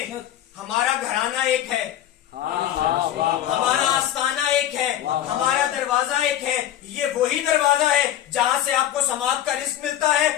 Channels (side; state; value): right; quieter; 11.9 dB